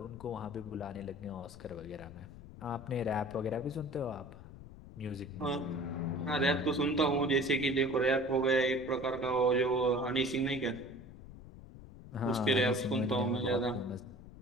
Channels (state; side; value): noise; left; rumble, 16 dB below the sound